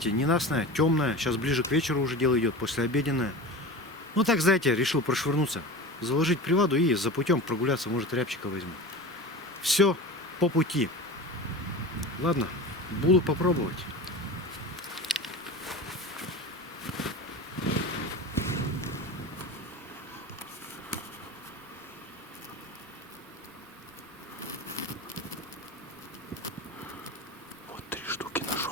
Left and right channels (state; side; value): normal; both; correlation 0.31